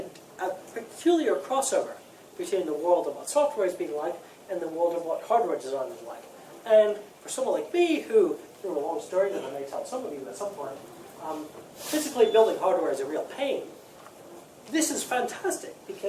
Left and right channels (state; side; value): identical; both; correlation 1.00